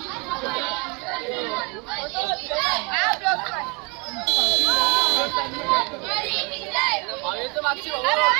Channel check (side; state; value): left; quieter; 30.7 dB